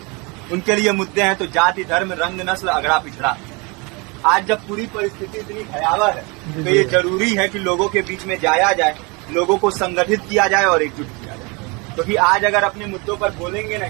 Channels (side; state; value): left; quieter; 28.7 dB